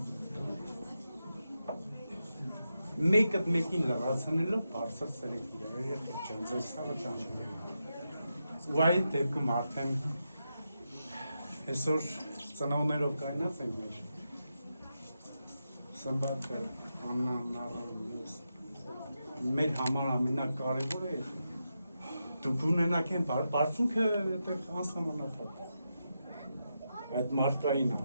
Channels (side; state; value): both; inverted; correlation -0.87